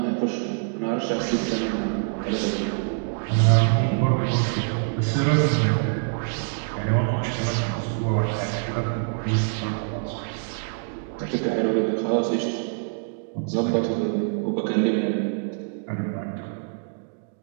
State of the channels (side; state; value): left; silent; 62 dB below the other